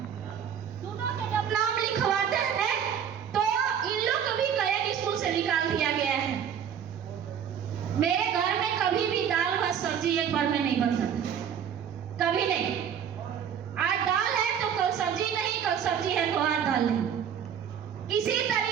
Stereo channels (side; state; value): left; quieter; 8.4 dB